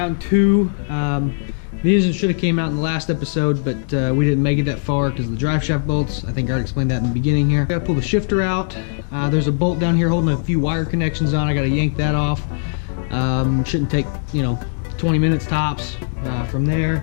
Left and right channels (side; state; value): right; silent; digital silence